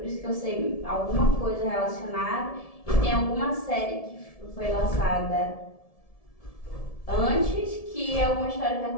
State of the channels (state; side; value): late; right; 1.7 ms